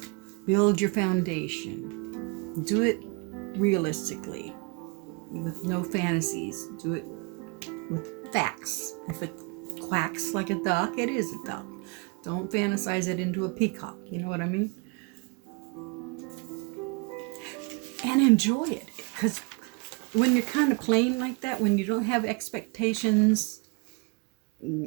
build your foundation, do it realistically, with no fantasies, do it with facts. If it quacks like a duck, it is a duck. Don't fantasize it into a peacock, you know what I mean? And enjoy it, because when you're kind of plain like that, when you don't have expectations,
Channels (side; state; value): left; quieter; 31.1 dB